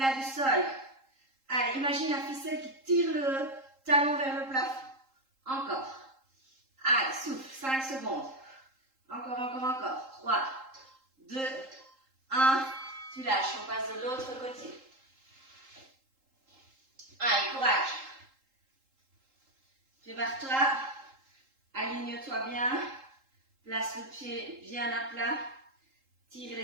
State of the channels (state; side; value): late; left; 3.8 ms